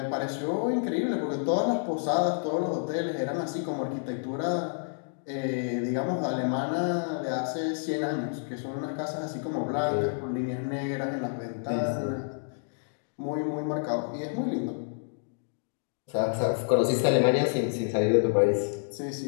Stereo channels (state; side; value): silent; right; digital silence